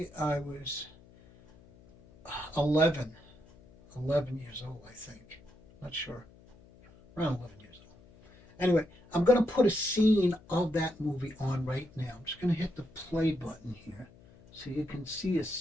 I was 11, 11 years old. I think, not sure, around 11 years old. Anyway, I'm going to put a scene of that movie on right now. I'm just going to hit the play button here so you can see a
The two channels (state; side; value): noise; left; hum, 25 dB below the sound